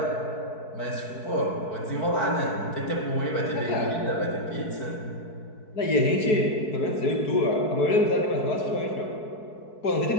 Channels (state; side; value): late; right; 4.6 ms